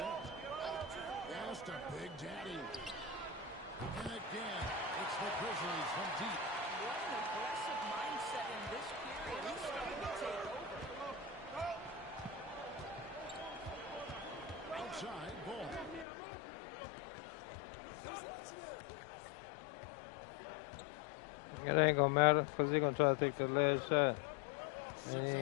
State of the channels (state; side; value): drops out; right; at 16.1 s